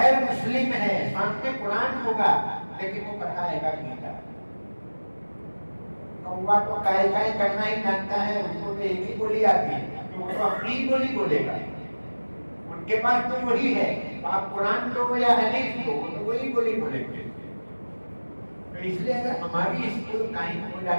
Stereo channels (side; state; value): both; inverted; correlation -1.00